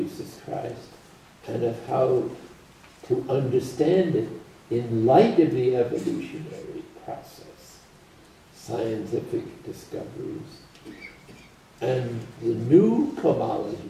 Christ and of how to understand it in light of the evolutionary process, scientific discoveries, and the new cosmology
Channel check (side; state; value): both; identical; correlation 1.00